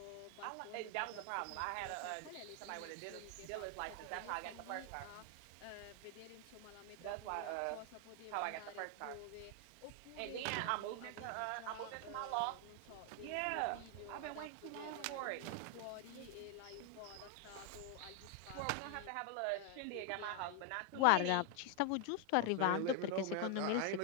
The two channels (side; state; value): both; different; correlation 0.00